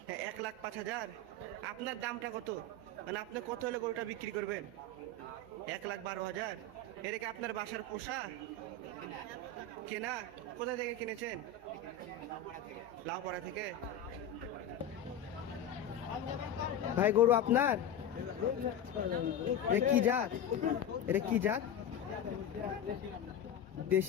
1,05,000। আপনার দামটা কত? মানে আপনি কত হলে গরুটা বিক্রি করবেন? 1,12,000। এটা কি আপনার বাসার পোষা কেনা? কোথা থেকে কিনেছেন? লাউপাড়া থেকে। ভাই গরু আপনার? এটা কি জাত? এটা কি জাত?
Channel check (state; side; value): quieter; right; 4.3 dB